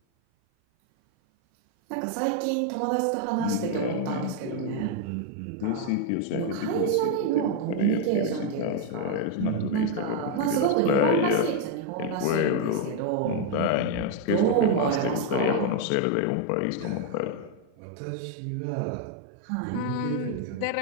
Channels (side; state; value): both; different; correlation 0.01